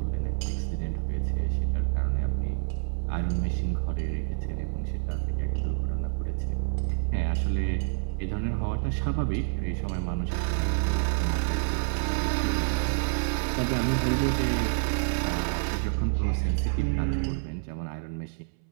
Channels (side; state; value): left; silent; 59 dB below the other